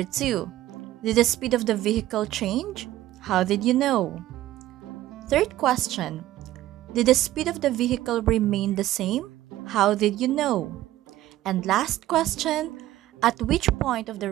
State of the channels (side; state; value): left; quieter; 14.6 dB